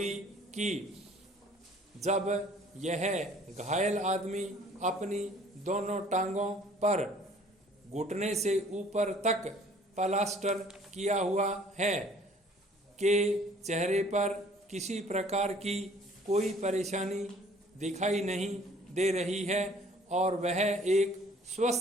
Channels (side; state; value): both; normal; correlation 0.55